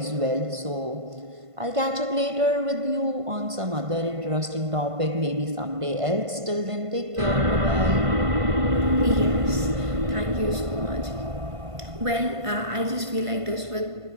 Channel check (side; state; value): left; late; 1.5 ms